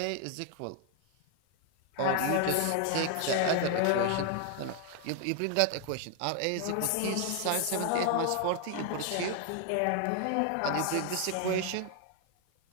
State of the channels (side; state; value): both; different; correlation 0.00